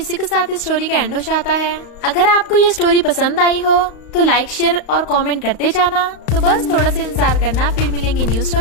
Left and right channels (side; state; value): right; late; 35 ms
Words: के साथ इस स्टोरी का एंड हो जाता है। अगर आपको ये स्टोरी पसंद आई हो तो लाइक शेयर और कमेंट करते जाना। तो बस थोड़ा सा इंतजार करना, फिर मिलेंगे न्यू